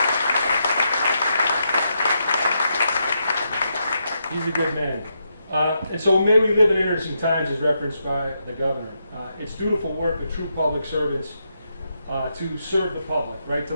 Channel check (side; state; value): both; inverted; correlation -0.82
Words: He's a good man. And so may we live in interesting times, as referenced by the Governor. It's dutiful work of true public servants to serve the public, right? To